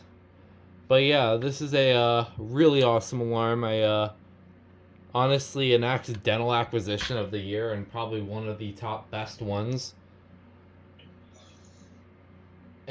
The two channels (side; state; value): both; identical; correlation 1.00